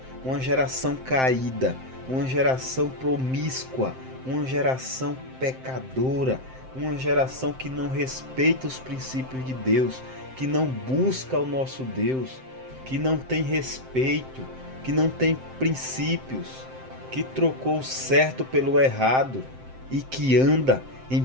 uma geração caída, uma geração promíscua, uma geração pecadora, uma geração que não respeita os princípios de Deus, que não busca o nosso Deus, que não tem respeito, que não tem princípios, que trocou o certo pelo errado e que anda em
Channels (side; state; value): left; late; 7.7 ms